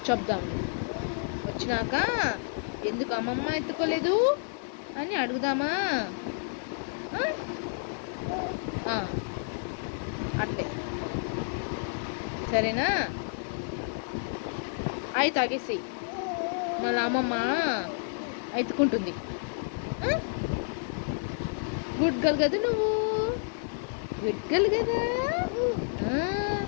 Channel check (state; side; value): silent; right; digital silence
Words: చెప్దాం వచ్చినాక, ఎందుకు అమ్మమ్మ ఎత్తుకోలేదు అని అడుగుదామా? అట్లే సరేనా? అయి తాగేసి మళ్ళీ అమ్మమ్మ ఎత్తుకుంటుంది. గుడ్ గర్ల్ కదా నువ్వు, గుడ్ గర్ల్ కదా.